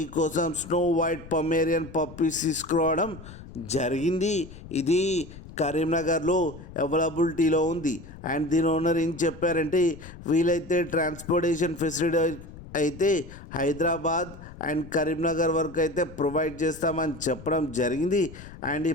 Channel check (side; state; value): left; noise; rumble, 16 dB below the sound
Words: స్నో వైట్ పొమేరియన్ పప్పీస్ తీసుకురావడం జరిగింది. ఇది కరీంనగర్లో అవైలబిలిటీలో ఉంది. అండ్ దీని ఓనర్ ఏం చెప్పారంటే, వీలైతే ట్రాన్స్పోర్టేషన్ ఫెసిలిటీ అయితే హైదరాబాద్ అండ్ కరీంనగర్ వరకు అయితే ప్రొవైడ్ చేస్తామని చెప్పడం జరిగింది. అండ్ ఈ